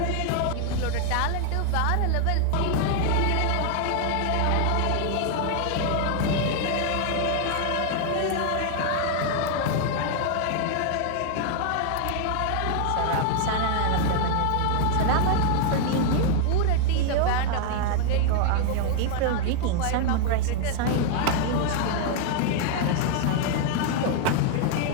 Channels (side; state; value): both; different; correlation 0.00